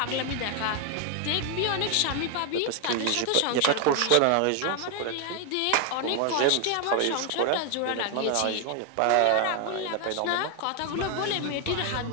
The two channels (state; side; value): different; both; correlation 0.01